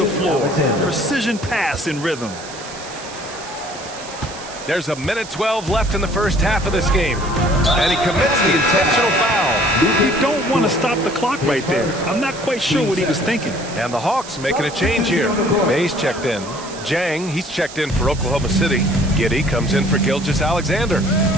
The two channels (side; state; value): right; noise; hiss, 15 dB below the sound